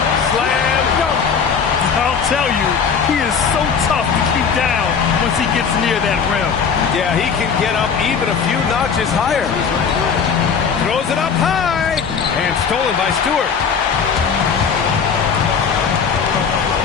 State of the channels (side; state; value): right; quieter; 6.3 dB